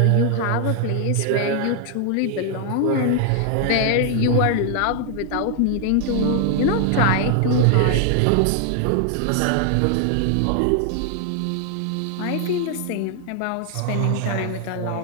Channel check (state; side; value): different; both; correlation 0.00